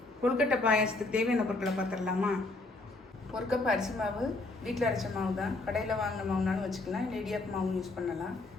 கொழுக்கட்டை பாயாசத்துக்கு தேவையான பொருட்களை பார்த்துடலாமா? ஒரு கப் அரிசி மாவு, வீட்டில் அரைச்ச மாவு தான். கடையில் வாங்கின மாவுனாலும் வச்சுக்கலாம், இல்லை இடியாப்பு மாவு யூஸ் பண்ணலாம்.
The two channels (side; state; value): right; quieter; 3.1 dB